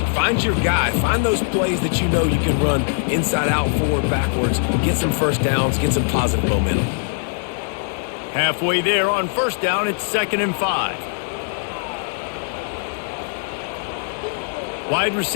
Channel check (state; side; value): silent; right; digital silence